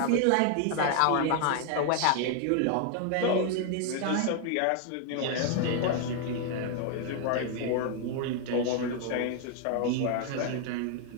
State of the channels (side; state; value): both; different; correlation 0.00